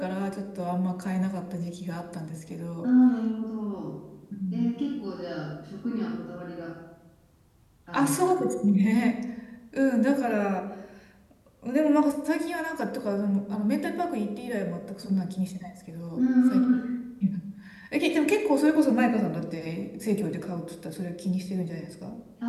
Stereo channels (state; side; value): identical; both; correlation 1.00